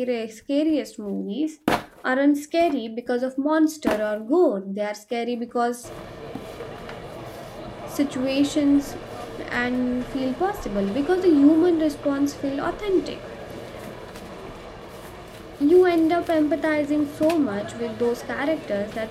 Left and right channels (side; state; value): both; identical; correlation 1.00